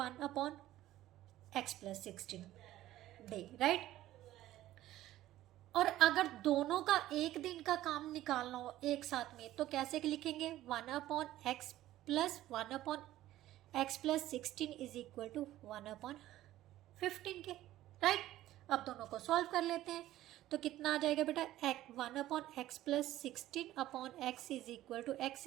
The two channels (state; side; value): quieter; left; 14.5 dB